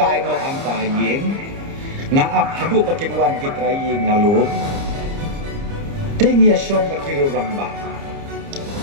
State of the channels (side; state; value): left; late; 30 ms